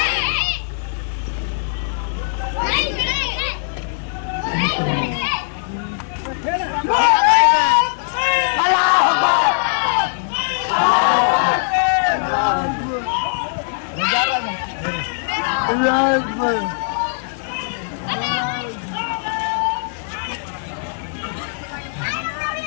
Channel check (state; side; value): silent; right; digital silence